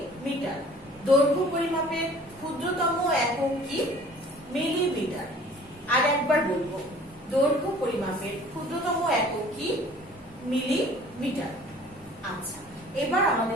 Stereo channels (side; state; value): both; normal; correlation 0.50